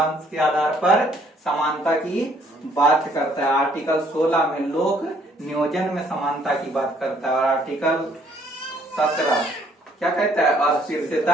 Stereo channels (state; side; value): normal; both; correlation 0.64